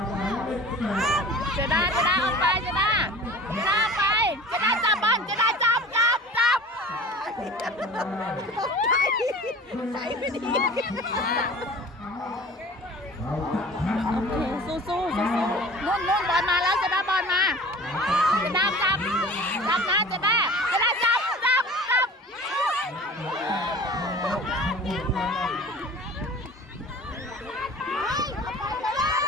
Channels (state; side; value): normal; both; correlation 0.42